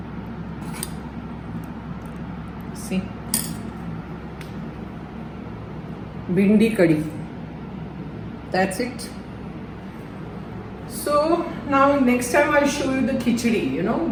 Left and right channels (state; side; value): identical; both; correlation 1.00